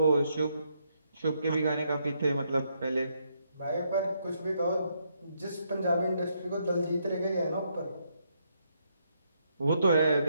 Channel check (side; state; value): both; inverted; correlation -0.76